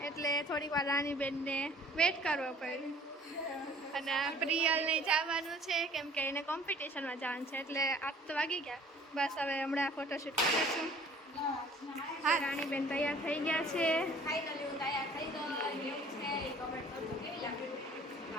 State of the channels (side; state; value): both; normal; correlation 0.52